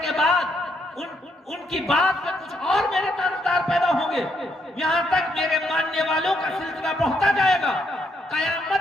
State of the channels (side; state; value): both; normal; correlation 0.75